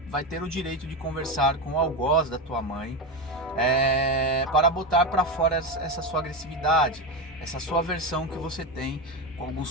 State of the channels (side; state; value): both; normal; correlation 0.16